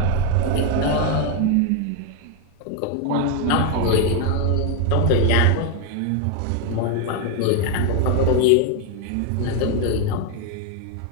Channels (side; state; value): both; different; correlation 0.01